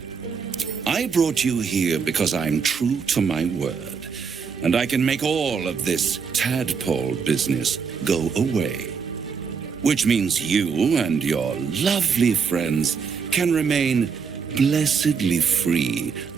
I brought you here because I'm true to my word, and I can make all of this tadpole business go away. which means you and your lovely friends can remain blessedly free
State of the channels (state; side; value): quieter; left; 6.0 dB